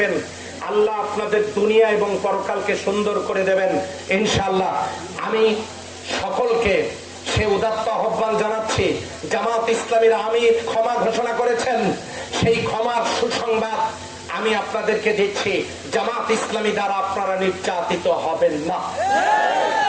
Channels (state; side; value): identical; both; correlation 1.00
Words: আল্লাহ আপনাদের দুনিয়া এবং পরকালকে সুন্দর করে দেবেন ইনশাআল্লাহ। আমি সকলকে সে উদাত্ত আহ্বান জানাচ্ছি। জামাত ইসলামীর আমির ক্ষমা ঘোষণা করেছেন, সেই ক্ষমার সুসংবাদ আমি আপনাদেরকে দিচ্ছি। জামাত ইসলামী দ্বারা আপনারা নির্যাতিত হবেন না,